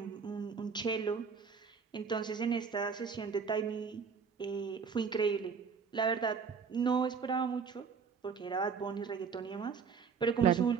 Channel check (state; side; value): quieter; left; 5.9 dB